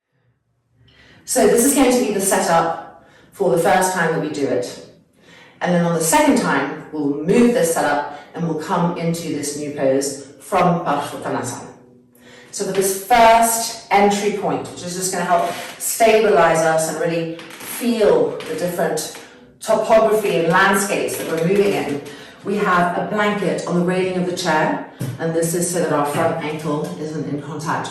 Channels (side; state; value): both; identical; correlation 1.00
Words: So this is going to be the setup for the first time that we do it. And then on the second time, we'll move this setup and we'll come into this new pose from Parshvattanasana. So for this first entry point, which is just going to help stabilize us and really feel the different topography and landscapes that we're moving in, we have a blanket on the railing of the chair, and this is so that our front ankle isn't in